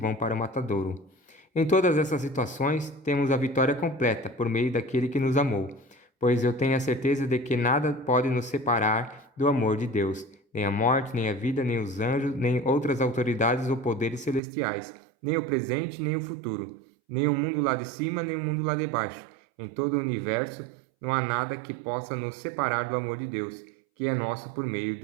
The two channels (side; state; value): left; drops out; at 14.4 s